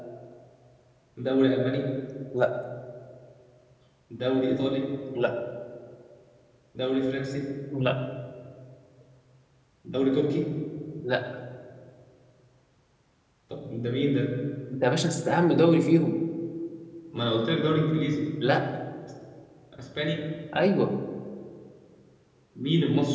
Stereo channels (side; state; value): both; identical; correlation 1.00